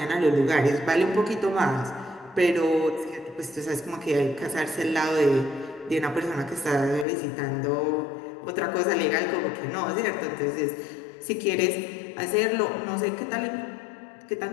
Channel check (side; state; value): right; drops out; at 7.1 s